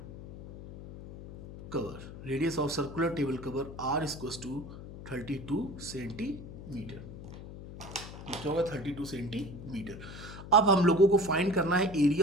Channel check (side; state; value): left; noise; hum, 13 dB below the sound